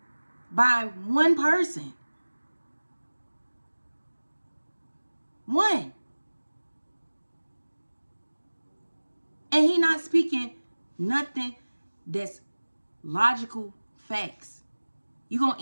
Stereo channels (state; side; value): inverted; both; correlation -1.00